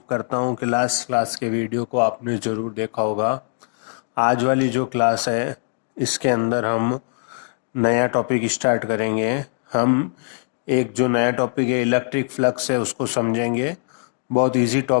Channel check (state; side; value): silent; right; digital silence